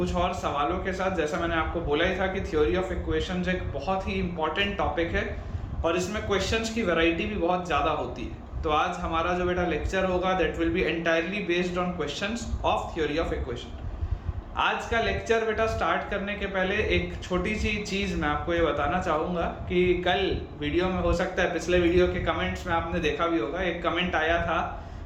और सवालों के साथ। जैसा मैंने आपको बोला ही था कि थ्योरी ऑफ इक्वेशंस एक बहुत ही इंपॉर्टेंट टॉपिक है और इसमें क्वेश्चंस की वैरायटी भी बहुत ज़्यादा होती है। तो आज हमारा जो बेटा लेक्चर होगा that will be entirely based on questions of theory of equation. आज का लेक्चर बेटा स्टार्ट करने के पहले एक छोटी सी चीज़ मैं आपको ये बताना चाहूँगा कि कल वीडियो में हो सकता है पिछले वीडियो के कमेंट्स में आपने देखा भी होगा, एक कमेंट आया था,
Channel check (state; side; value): identical; both; correlation 1.00